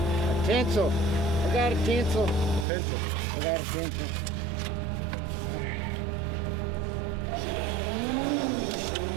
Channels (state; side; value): drops out; left; at 2.7 s